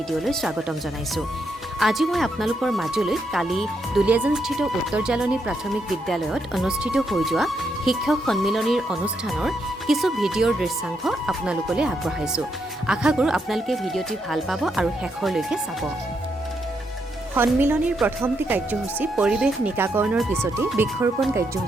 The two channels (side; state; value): both; normal; correlation 0.79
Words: স্বাগতম জনাইছোঁ। আজি মই আপোনালোকৰ মাজলৈ কালি দুলীয়াজানস্থিত উত্তৰ জালনী প্ৰাথমিক বিদ্যালয়ত অনুষ্ঠিত হৈ যোৱা শিক্ষক সন্মিলনীৰ অনুষ্ঠানৰ কিছু ভিডিঅ'ৰ দৃশ্যাংশ আপোনালোকলৈ আগবঢ়াইছোঁ। আশা কৰোঁ আপোনালোকে ভিডিঅ'টি ভাল পাব আৰু শেষৰলৈকে চাব। সন্মিলনীৰ প্ৰথমটি কাৰ্যসূচী পৰিৱেশ নিকাকৰণৰ পিছতেই বৃক্ষৰোপণ